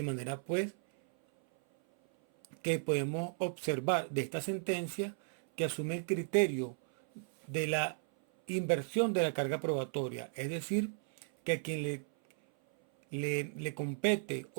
manera pues que podemos observar de esta sentencia que asume el criterio de la inversión de la carga probatoria, es decir, que a quien le compete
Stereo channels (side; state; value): left; silent; 54 dB below the other